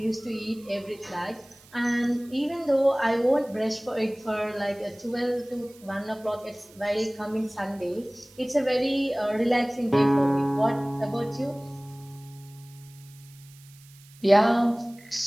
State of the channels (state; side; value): noise; right; hiss, 25 dB below the sound